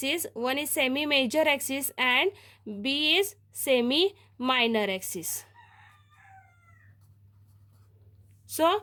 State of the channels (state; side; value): identical; both; correlation 1.00